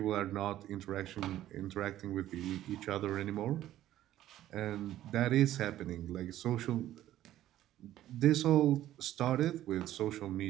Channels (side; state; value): left; quieter; 13.3 dB